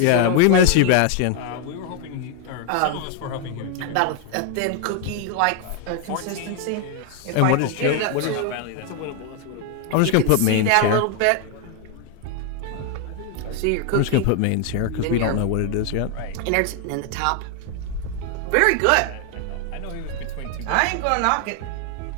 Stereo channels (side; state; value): both; different; correlation 0.00